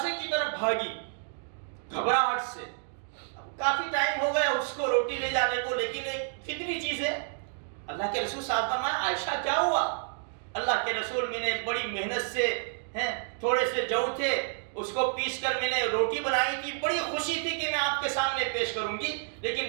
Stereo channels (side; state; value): left; silent; digital silence